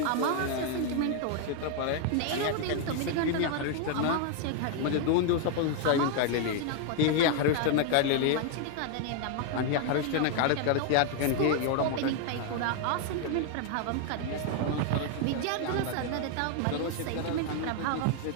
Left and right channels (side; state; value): both; different; correlation 0.00